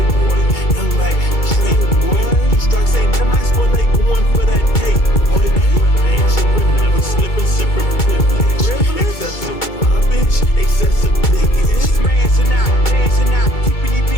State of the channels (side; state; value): right; late; 2.3 ms